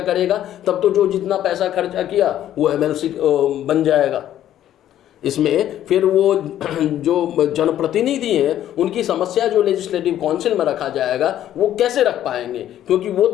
तब तो जो जितना पैसा खर्चा किया वो एमएलसी बन जाएगा। इसमें फिर वो जो जनप्रतिनिधि हैं उनकी समस्या जो लेजिस्लेटिव काउंसिल में रखा जाएगा वो कैसे रख पाएंगे, क्योंकि वो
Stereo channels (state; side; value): quieter; right; 11.7 dB